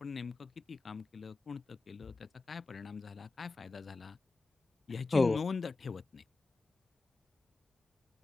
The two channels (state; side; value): quieter; right; 3.6 dB